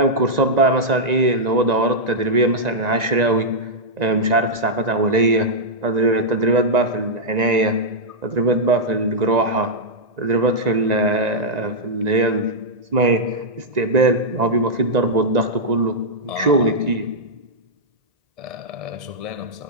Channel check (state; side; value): late; left; 1.9 ms